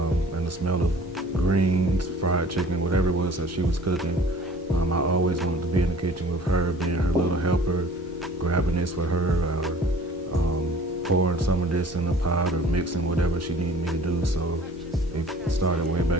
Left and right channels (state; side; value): normal; both; correlation 0.49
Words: and the smell of greens, fried chicken, whatever it was that she was cooking. I always wanted to be in the kitchen with her, being her little helper, grabbing this for her, or pouring some of this in a pot, or mixing whatever she needed me to do. So it started way